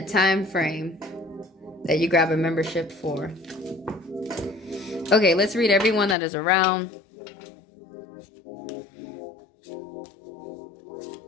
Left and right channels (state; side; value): drops out; right; at 6.2 s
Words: time frame that you grab a membership for. Okay, let's read everyone that is around.